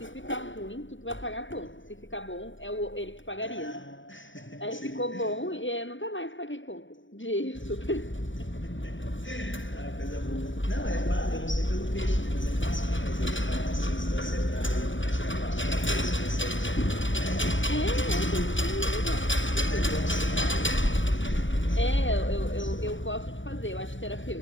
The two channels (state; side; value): late; right; 0.56 ms